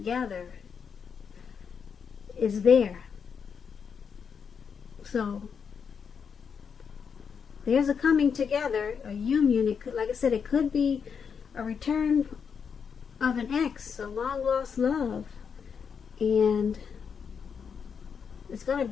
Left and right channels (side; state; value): right; quieter; 6.6 dB